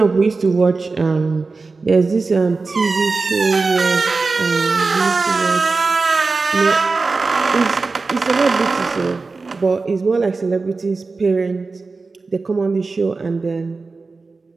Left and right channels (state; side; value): quieter; left; 4.0 dB